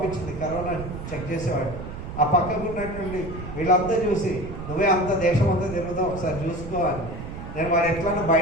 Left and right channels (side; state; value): right; noise; rumble, 9 dB below the sound